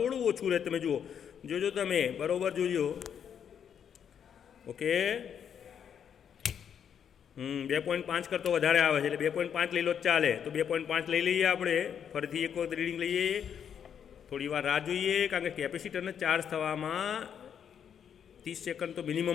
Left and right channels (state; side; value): quieter; right; 8.2 dB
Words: ઓછું રહે, તમે જુઓ, જોજો તમે બરાબર જોજો. ઓકે 2.5 કરતો વધારે આવે છે એટલે 2.5 લઈ લો ચાલે. તો 2.5 લઈ લઈએ આપણે. ફરીથી એક વખત રીડિંગ લઈએ. થોડી વાર રાહ જોઈએ, કારણ કે કેપેસિટરને ચાર્જ થવામાં 30 સેકન્ડ તો